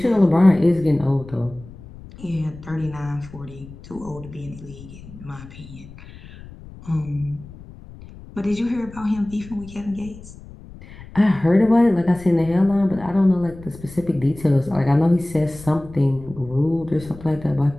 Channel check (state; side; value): noise; left; rumble, 18 dB below the sound